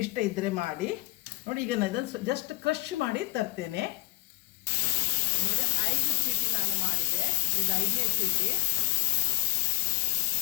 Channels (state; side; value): quieter; right; 21.1 dB